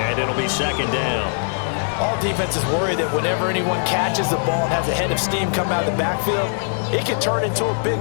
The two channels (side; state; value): right; silent; 60 dB below the other